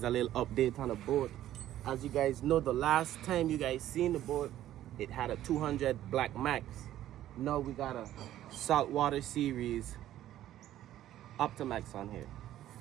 a little update on the boat. As you guys know, the last time you guys seen the boat, it had a 200 Blackmax. Now we got a saltwater series Optimax on here.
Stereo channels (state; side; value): quieter; left; 12.9 dB